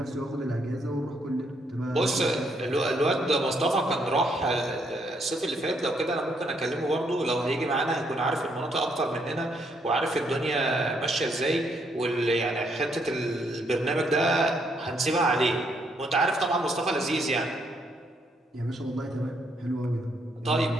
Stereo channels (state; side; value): normal; both; correlation 0.73